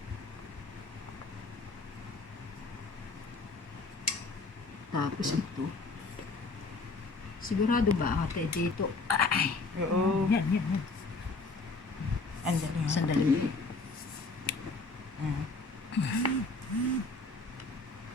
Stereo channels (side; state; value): right; quieter; 3.7 dB